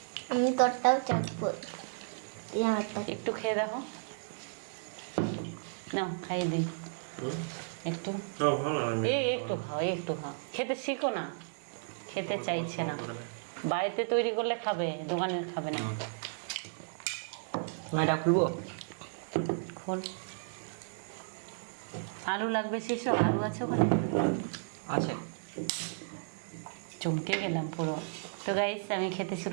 আমি তোরটাও চাখবো, একটু খেয়ে দেখো, নাও খাইয়ে দিই একটু। একটু খাও, একটু খাও, খেতে শিখো না। খেতে চাইছে না, বাড়িতে তৈরি করলে খাবে, দোকানের খাবে না। এটা খুলবো? খোল। আলু লাগবে সেসব? আলু আছে ওখানে? আছে। চমকে গেলাম পুরো। তো গাইস আমি খেতে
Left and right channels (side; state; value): left; silent; 55 dB below the other